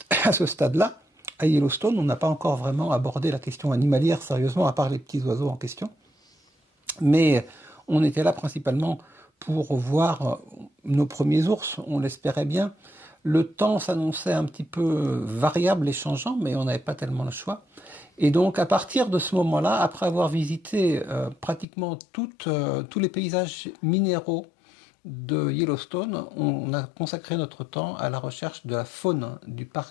stade-là, à Yellowstone, on n'a pas encore vraiment abordé la question animalière sérieusement, à part les petits oiseaux en question. Mais on était là principalement pour voir nos premiers ours, on l'espérait bien. Le temps s'annonçait un petit peu variable et changeant, mais on n'avait pas tellement le choix. Et donc, à partir de ce moment-là, après avoir visité pratiquement tous les paysages minéraux de Yellowstone, on a consacré notre temps à la recherche de la faune du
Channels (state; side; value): drops out; right; at 21.7 s